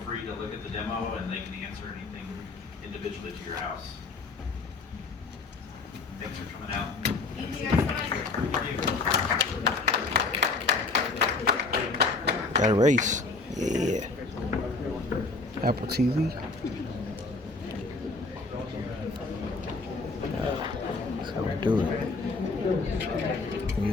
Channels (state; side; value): quieter; right; 3.8 dB